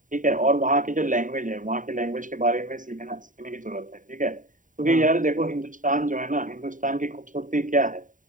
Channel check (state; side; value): late; left; 0.38 ms